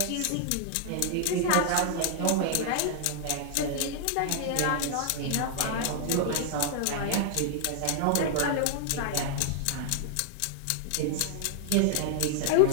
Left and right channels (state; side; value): different; both; correlation 0.00